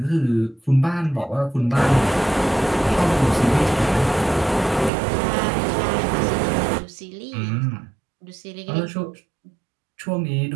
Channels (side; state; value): left; drops out; at 4.9 s